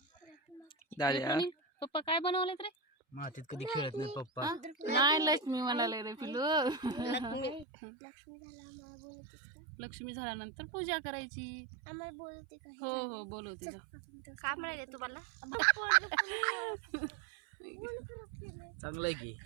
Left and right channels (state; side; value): drops out; left; at 7.7 s